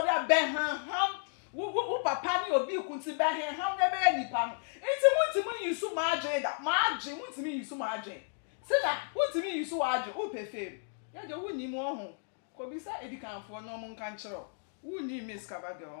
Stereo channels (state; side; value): silent; right; digital silence